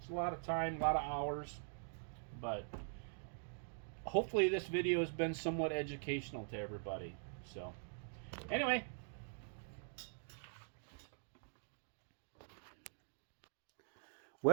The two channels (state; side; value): silent; left; digital silence